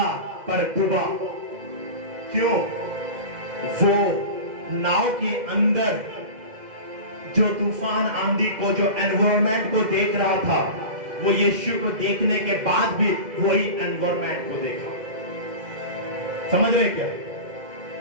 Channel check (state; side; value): late; left; 2.1 ms